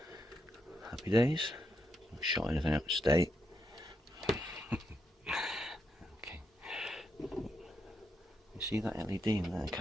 Happy days. Not shot anything out to date. Okay. You see that LED in there? I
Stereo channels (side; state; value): both; normal; correlation 0.82